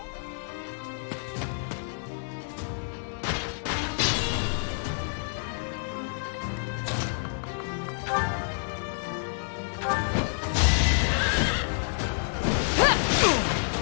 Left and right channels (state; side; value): silent; right; digital silence